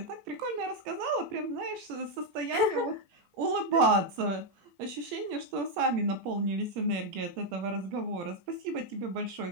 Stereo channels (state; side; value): late; left; 17 ms